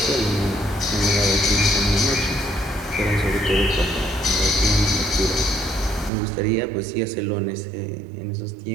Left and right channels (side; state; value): left; drops out; at 6.1 s